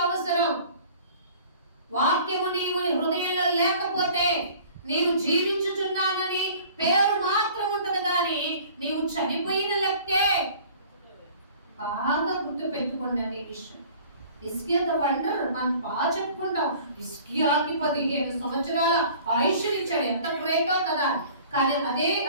అవసరం. వాక్యము నీవు హృదయంలో లేకపోతే నీవు జీవించుచున్నానని పేరు మాత్రం ఉంటది, కానీ నీవు చనిపోయిన లెక్కే. బాగా గుర్తు పెట్టుకోండి ఈ విషయం. హిజ్కియాతో అంటారు, మనం బాగా చెప్పుకుంటాం, హిజ్కియాకి 15 సంవత్సరాల ఆయుష్ ఇచ్చాడు, ఎంత గ్రేటో కదా. కానీ అదే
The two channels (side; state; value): both; inverted; correlation -0.48